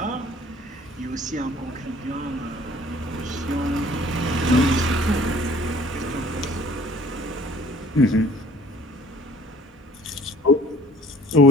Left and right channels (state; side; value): normal; both; correlation 0.54